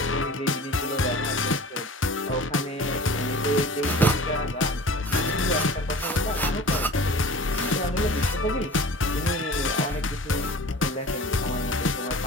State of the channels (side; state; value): both; normal; correlation 0.41